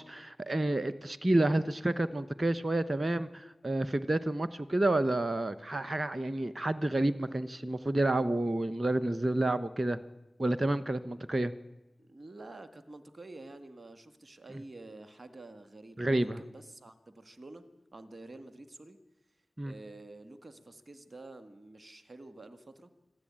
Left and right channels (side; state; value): both; normal; correlation 0.96